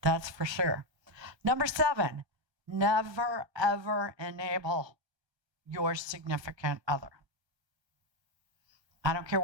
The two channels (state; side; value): late; left; 1.3 ms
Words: That's for sure. Number 7, never, ever enable your significant other. I don't care